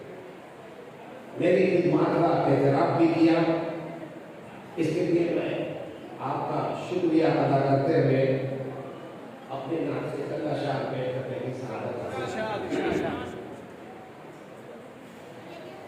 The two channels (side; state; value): both; identical; correlation 1.00